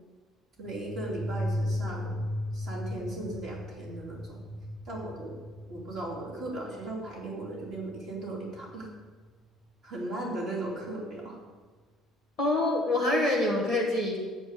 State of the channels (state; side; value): normal; both; correlation 0.61